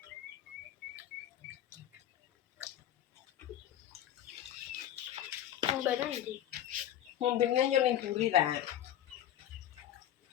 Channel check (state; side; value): quieter; right; 11.5 dB